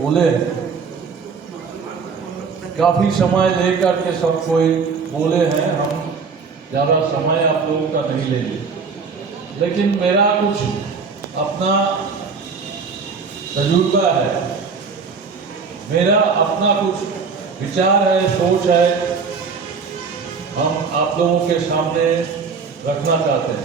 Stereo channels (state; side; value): quieter; left; 5.2 dB